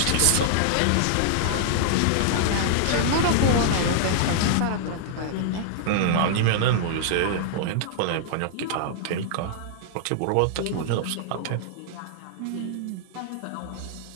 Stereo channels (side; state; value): both; different; correlation -0.01